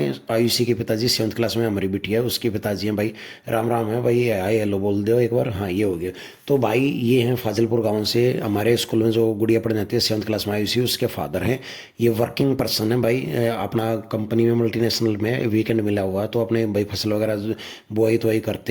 आयुषी के पिताजी, 7th क्लास में हमारी बिटिया है उसके पिताजी हैं भाई। राम राम है भाई, हाय हेलो बोल दो एक बार। हाँ ये हो गया। तो भाई ये हैं फाजिलपुर गांव से, हमारे स्कूल में जो गुड़िया पढ़ने जाती है 7th क्लास में आयुषी, उसके फादर हैं। ये वर्किंग पर्सन है भाई, अपना कंपनी में मल्टीनेशनल में वीकेंड मिला हुआ है, तो अपने भाई फसल वगैरह बुआई तो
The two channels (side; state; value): both; identical; correlation 1.00